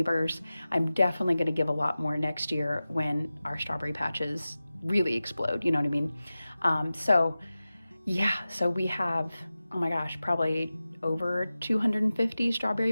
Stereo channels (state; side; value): inverted; both; correlation -0.96